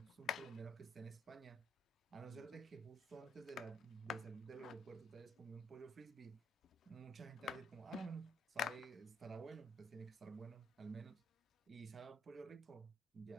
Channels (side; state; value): both; normal; correlation 0.71